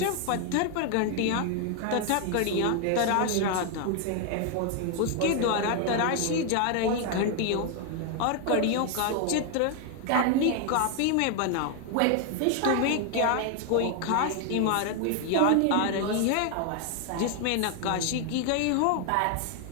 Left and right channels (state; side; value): different; both; correlation 0.00